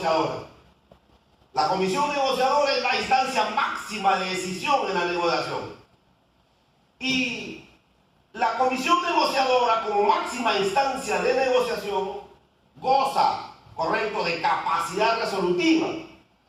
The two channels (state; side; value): identical; both; correlation 1.00